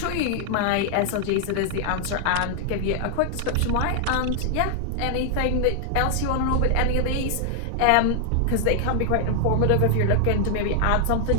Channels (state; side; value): different; both; correlation 0.00